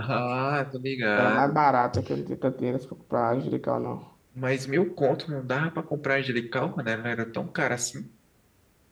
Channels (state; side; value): identical; both; correlation 1.00